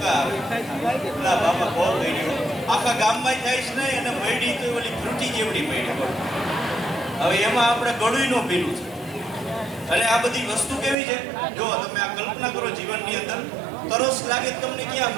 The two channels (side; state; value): left; drops out; at 11.0 s